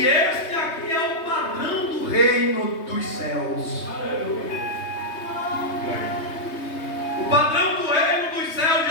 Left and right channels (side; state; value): right; late; 3.2 ms